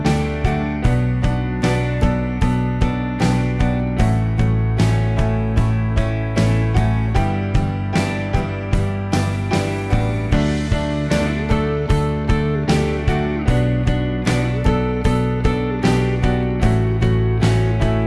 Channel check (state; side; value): identical; both; correlation 1.00